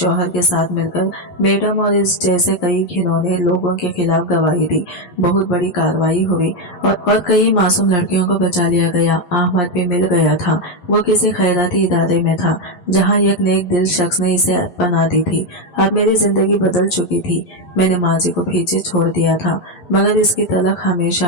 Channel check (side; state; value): right; late; 11 ms